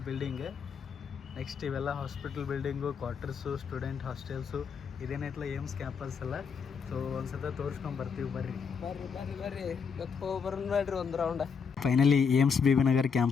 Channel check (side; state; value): right; quieter; 6.1 dB